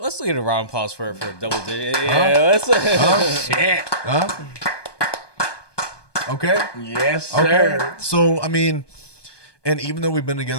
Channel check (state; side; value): late; right; 1.2 ms